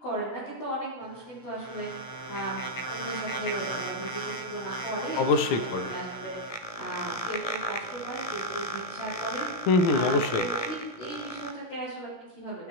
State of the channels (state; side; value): late; right; 17 ms